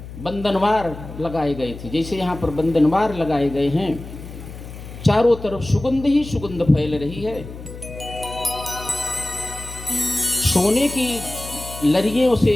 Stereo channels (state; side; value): noise; left; hum, 13 dB below the sound